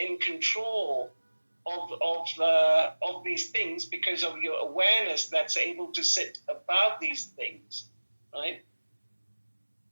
control of these things because of your awareness that's able to sit above these things, right?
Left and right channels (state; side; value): inverted; both; correlation -1.00